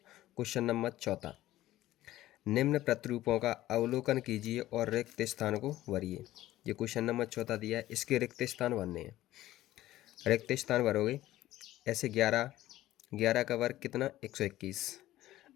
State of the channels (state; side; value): quieter; right; 15.1 dB